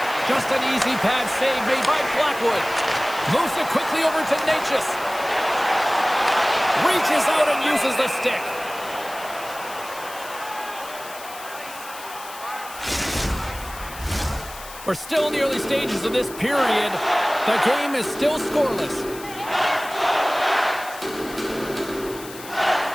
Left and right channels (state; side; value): noise; left; hiss, 15 dB below the sound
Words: Just an easy pad save made by Blackwood. Moves it quickly over to Natchez. Reaches out and uses the stick. We're still in the early stages of this period. The game is still scoreless.